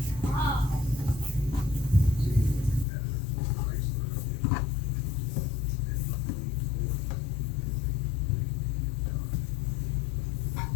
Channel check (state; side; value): drops out; right; at 2.9 s